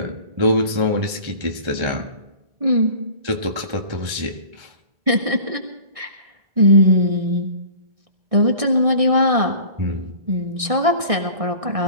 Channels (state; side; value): late; left; 1.6 ms